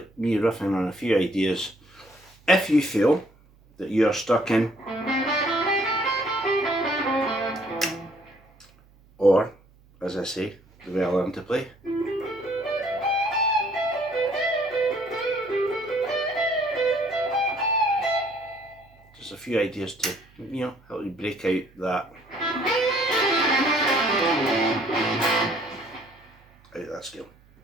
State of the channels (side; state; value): right; noise; hum, 29 dB below the sound